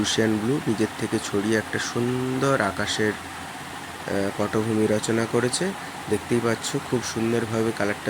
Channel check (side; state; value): both; identical; correlation 1.00